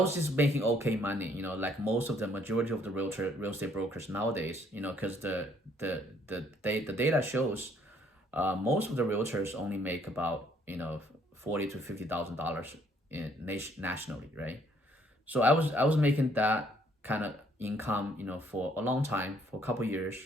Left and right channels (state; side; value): normal; both; correlation 0.65